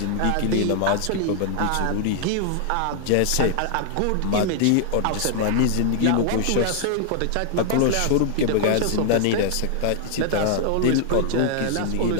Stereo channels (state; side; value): different; both; correlation 0.00